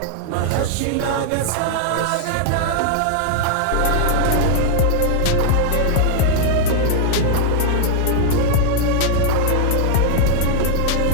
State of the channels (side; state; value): both; different; correlation 0.00